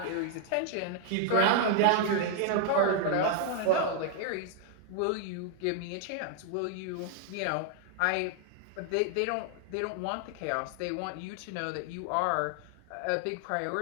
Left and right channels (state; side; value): different; both; correlation 0.00